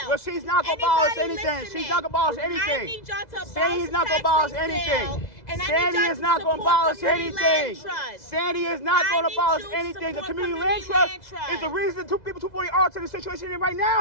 Well, she's not gonna abolish anything. She's not gonna abolish I anything. need y'all to abolish Sandy's not gonna the abolish tax lien anything. sale, and I need Sandy y'all is to not gonna support abolish community land anything. trust. Sandy is not I gonna need abolish you to anything. The support community community land land trust is the trust. reason people 248 Arlington in the situation they're in right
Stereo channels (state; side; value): late; right; 2.0 ms